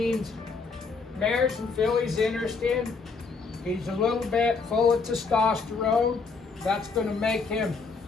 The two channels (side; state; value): right; quieter; 4.5 dB